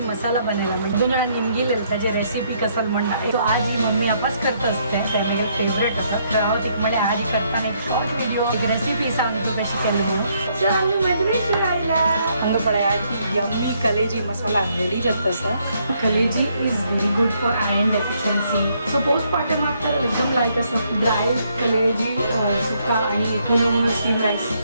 मसाला बनायला म्हणजे दोन जाणां निमगेले त्याची रेसिपी कसल म्हणना तो आज ही मम्मी आपास करत असते ते म्हगे फेवरेट असं तर हांव तिका म्हळें आज करताना एक शॉर्ट व्हिडिओ एक रेसिपी सांगतो कशी केली म्हणून सो आमी मदरेशी आयला हांगा पळय आज यम्मी कलेजी मसाला रेडी जाता सर कलेजी is very good for iron deficiency so postmortem after एकदम लायक असं ड्राय कलेजी सुका आणि पुन्हा स्टीम राईस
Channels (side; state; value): both; inverted; correlation -0.71